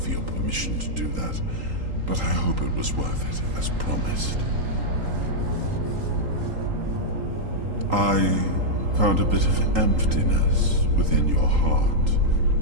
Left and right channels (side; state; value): left; late; 3.8 ms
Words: your permission to do that, but I hope it was worth it, as promised. I found a bit of emptiness within your heart,